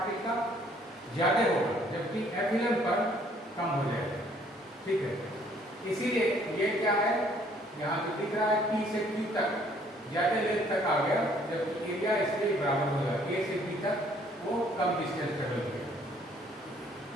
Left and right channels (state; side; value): normal; both; correlation 0.61